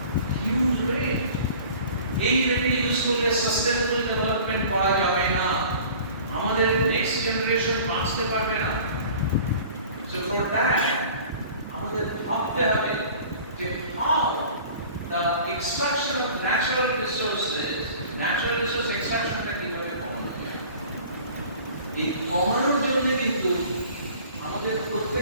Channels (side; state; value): both; inverted; correlation -0.45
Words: Huge rate. এই রেটে ইউজ করলে সাস্টেনেবল ডেভেলপমেন্ট করা যাবে না, আমাদের নেক্সট জেনারেশন বাঁচতে পারবে না। সো ফর দ্যাট আমাদের ভাবতে হবে যে how the extraction of natural resource এক্সট্রাকশনটা কিভাবে কমানো যায়। এই কমানোর জন্য কিন্তু আমাদের